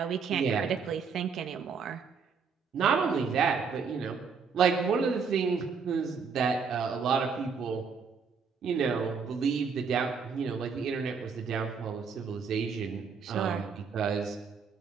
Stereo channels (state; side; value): quieter; left; 5.7 dB